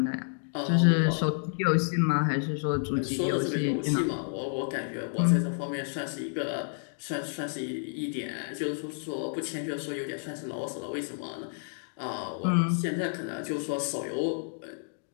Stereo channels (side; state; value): right; silent; digital silence